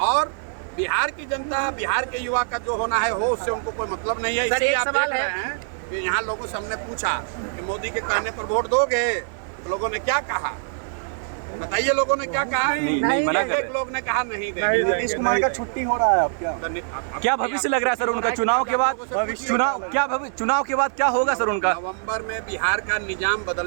और बिहार की जनता, बिहार के युवा का जो होना है हो, उससे उनको कोई मतलब नहीं है। इसलिए आप देख रहे हैं कि यहाँ लोगों से हमने पूछा कि मोदी के कहने पर वोट दोगे, तो लोगों ने क्या कहा बताइए। लोगों ने क्या कहा? एक लोग ने कहा नहीं देंगे। नीतीश कुमार का छुट्टी हो रहा है। अब क्या भविष्य लग रहा है सर उनका चुनाव के बाद? चुनाव के बाद क्या होगा सर उनका? नवंबर में बिहार का निजाम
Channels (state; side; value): silent; left; 55 dB below the other